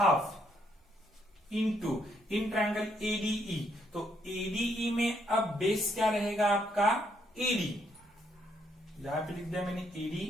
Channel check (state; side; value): normal; both; correlation 0.73